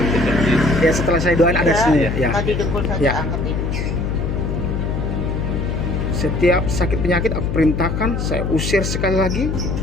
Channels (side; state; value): left; noise; hum, 2 dB below the sound